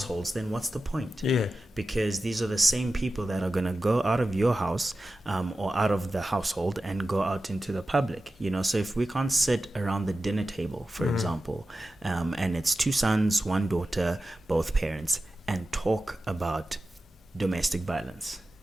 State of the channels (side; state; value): both; normal; correlation 0.93